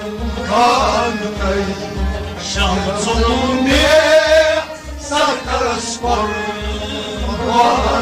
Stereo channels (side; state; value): both; identical; correlation 1.00